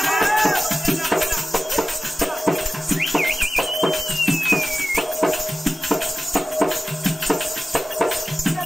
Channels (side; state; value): both; normal; correlation 0.95